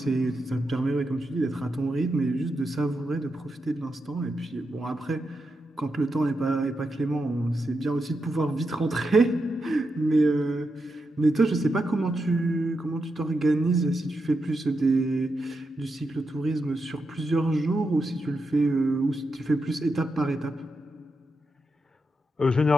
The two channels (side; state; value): both; normal; correlation 0.86